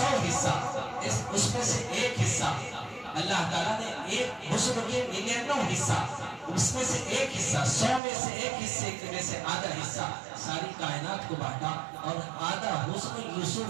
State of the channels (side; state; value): left; drops out; at 8.0 s